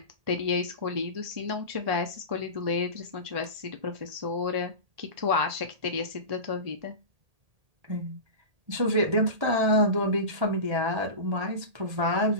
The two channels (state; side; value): late; left; 1.8 ms